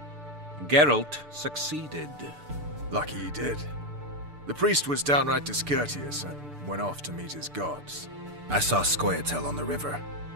Geralt succeeded. Lucky he did. The priest was downright discourteous and went off to meet his gods. I saw Scoia'tael on the river.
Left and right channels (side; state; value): left; late; 6.8 ms